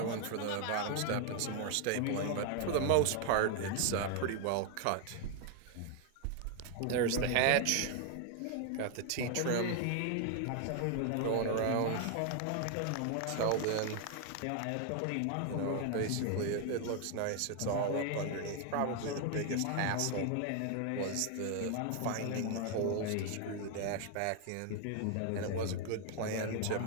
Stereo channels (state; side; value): different; both; correlation 0.00